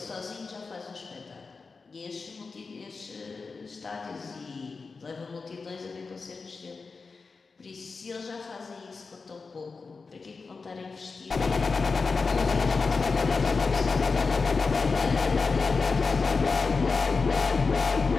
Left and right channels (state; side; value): quieter; right; 4.4 dB